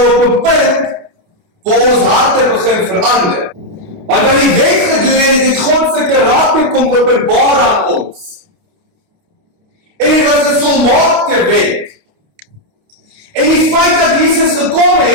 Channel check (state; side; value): late; left; 29 ms